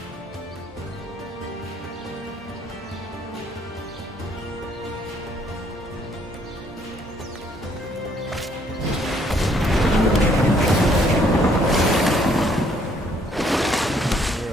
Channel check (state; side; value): normal; both; correlation 0.66